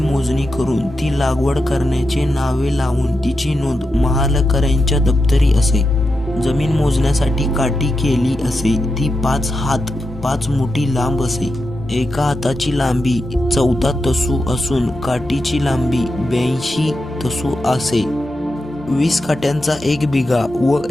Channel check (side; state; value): both; normal; correlation 0.88